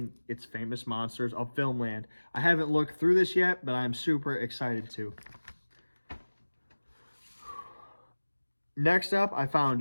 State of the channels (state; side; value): inverted; both; correlation -1.00